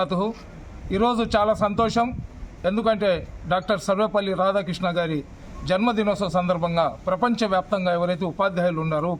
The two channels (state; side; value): identical; both; correlation 1.00